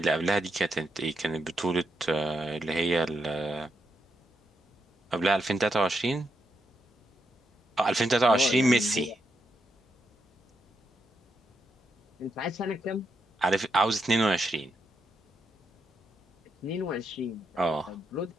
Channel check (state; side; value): normal; both; correlation 0.83